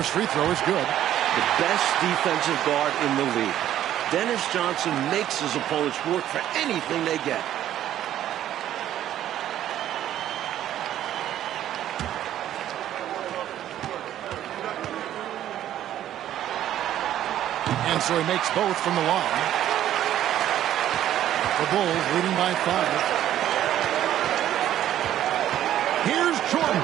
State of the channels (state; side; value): quieter; left; 11.9 dB